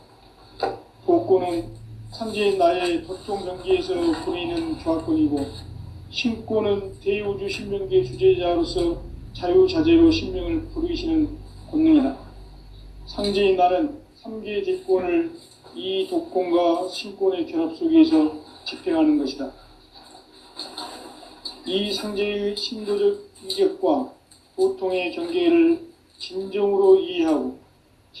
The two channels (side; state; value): both; identical; correlation 1.00